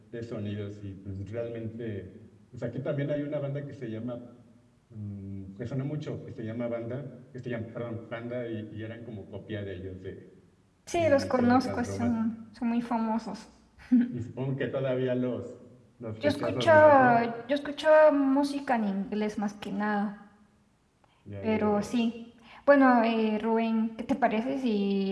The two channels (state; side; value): identical; both; correlation 1.00